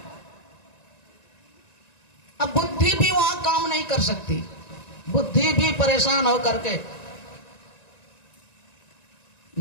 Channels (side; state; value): right; late; 1.9 ms